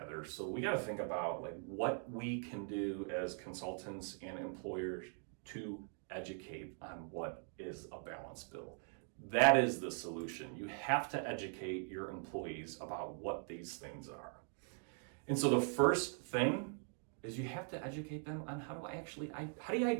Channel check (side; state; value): left; silent; 50 dB below the other